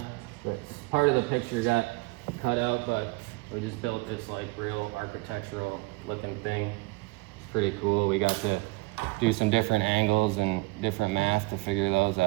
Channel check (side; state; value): left; quieter; 24.2 dB